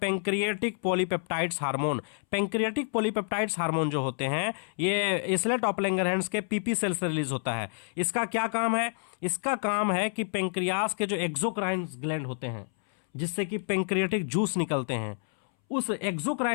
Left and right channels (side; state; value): right; silent; 59 dB below the other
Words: polypeptides hormone. Pancreatic polypeptides hormone जो होते हैं, ये इसलेट ऑफ लैंगरहैंस के पीपी सेल से रिलीज होता है। इसका क्या काम है? इसका काम है कि पेंक्रियास के जो एक्सोक्राइन ग्लैंड होते हैं, जिससे कि पेंक्रियाटिक जूस निकलते हैं, उस